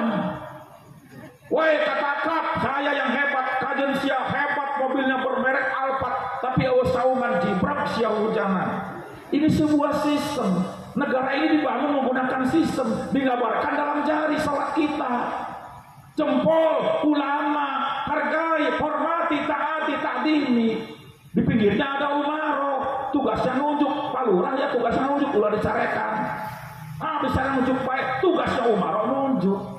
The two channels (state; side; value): identical; both; correlation 1.00